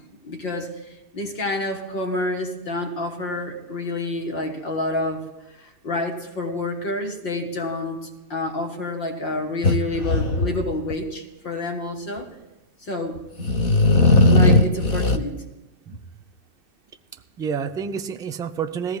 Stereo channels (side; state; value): right; late; 2.6 ms